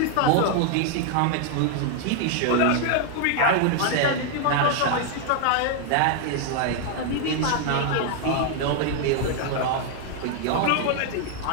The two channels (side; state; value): both; different; correlation 0.00